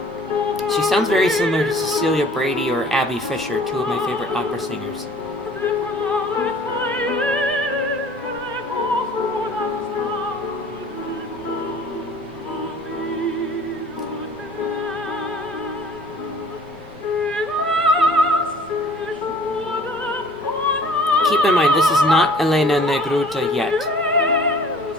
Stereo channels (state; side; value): normal; both; correlation 0.51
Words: She sounds very similar to Cecilia Brady or Abby Fisher, two of my favorite opera singers. Keep in mind, this is not Elena Negruta yet.